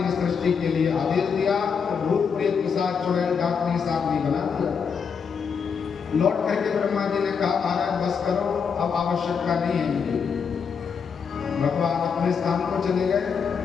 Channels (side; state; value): right; quieter; 6.3 dB